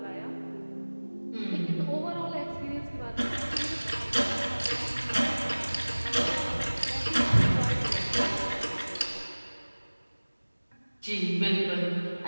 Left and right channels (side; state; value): both; inverted; correlation -1.00